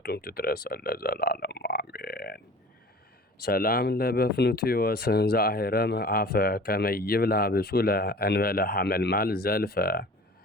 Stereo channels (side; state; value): both; normal; correlation 0.43